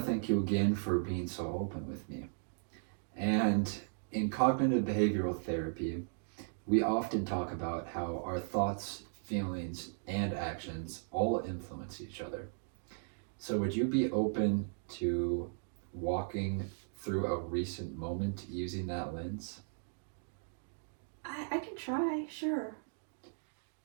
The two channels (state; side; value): silent; left; digital silence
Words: thank you again for being so open with me. And in cognitive behavioral therapy, we often talk about how our thoughts, feelings, and actions all influence each other. So, would you be open to walking through a recent moment using that lens? I can try, sure.